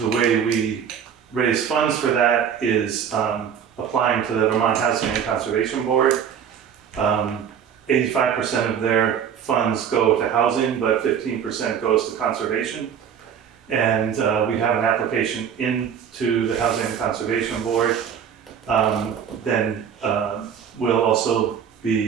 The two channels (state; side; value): quieter; left; 8.1 dB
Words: way we raise funds for that is applying to the Vermont Housing and Conservation Board. 85% of their funds go to housing, but 15% goes to conservation. And we have an application into the Housing and Conservation Board. Then we'll also